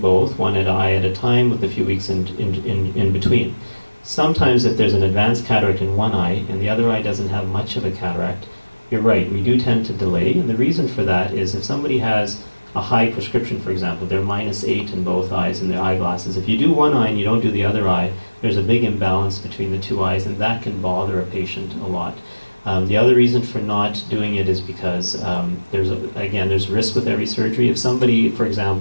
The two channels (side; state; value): both; inverted; correlation -1.00